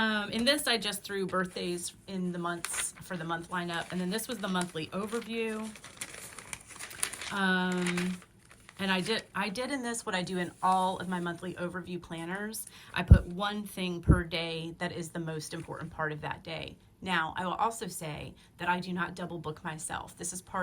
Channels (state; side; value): identical; both; correlation 1.00